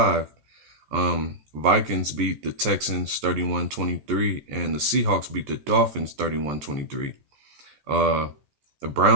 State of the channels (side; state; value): left; late; 14 ms